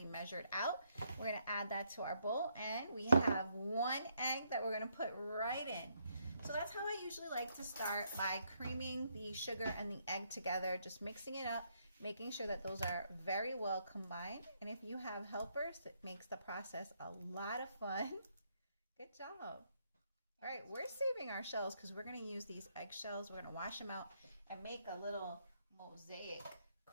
measured out. We're going to add that to our bowl, and we have 1 egg that we're going to put right in. So that's how I usually like to start, by creaming the sugar and the egg together, just mixing it up, making sure that those are very well combined. And if you have helpers, it makes the process a lot of fun. Good job. All right, we're saving our shells because we're going to use these eggshells. We're going to wash them out and make a little mosaic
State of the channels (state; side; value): inverted; both; correlation -0.74